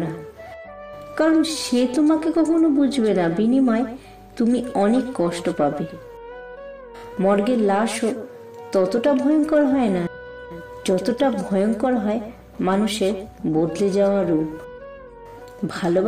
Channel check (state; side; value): identical; both; correlation 1.00